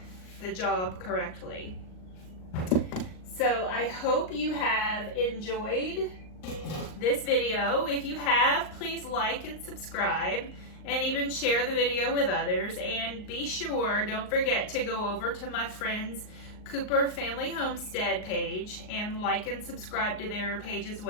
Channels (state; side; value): late; right; 38 ms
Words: the job correctly. So I hope you have enjoyed this video. If you have, please like and subscribe and even share the video with others. And be sure, don't forget to go over to my friend's Cooper Family Homestead page and like and subscribe to their page as